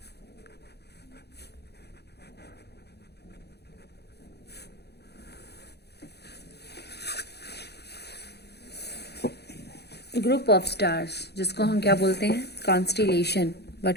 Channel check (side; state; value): right; late; 0.48 ms